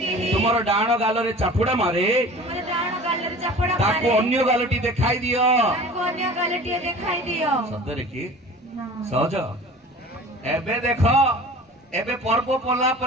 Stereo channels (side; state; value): both; normal; correlation 0.42